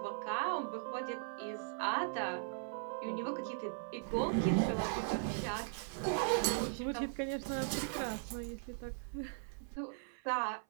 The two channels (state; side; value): silent; left; 52 dB below the other